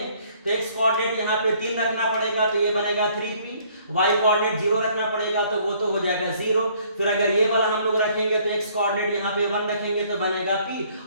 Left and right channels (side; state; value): both; inverted; correlation -0.61